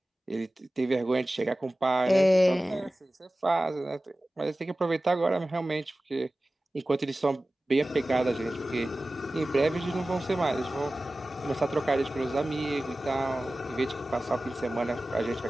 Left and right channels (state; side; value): normal; both; correlation 0.96